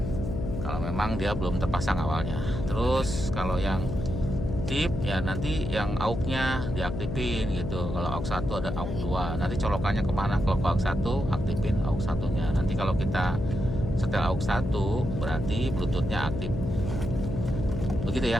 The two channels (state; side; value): noise; left; hum, 4 dB below the sound